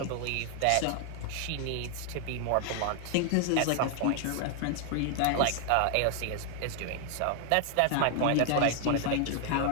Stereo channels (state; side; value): different; both; correlation 0.00